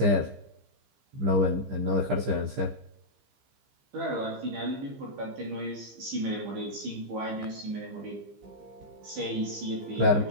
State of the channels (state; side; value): late; left; 15 ms